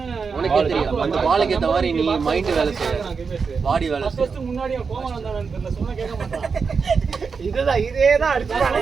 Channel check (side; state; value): left; quieter; 5.3 dB